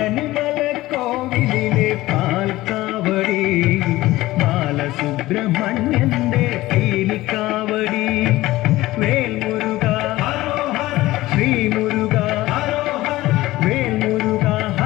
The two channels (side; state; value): right; quieter; 17.5 dB